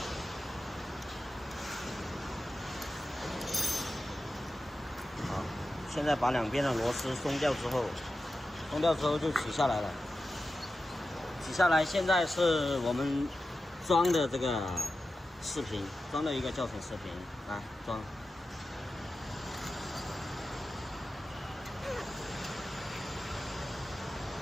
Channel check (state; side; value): normal; both; correlation 0.92